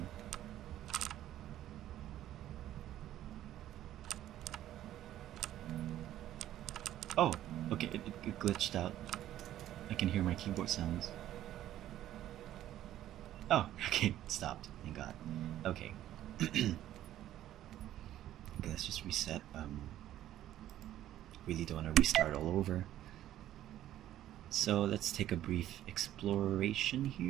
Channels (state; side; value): quieter; left; 12.7 dB